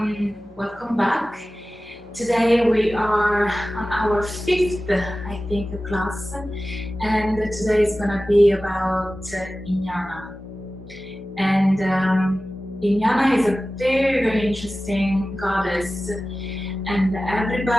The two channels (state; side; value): normal; both; correlation 0.96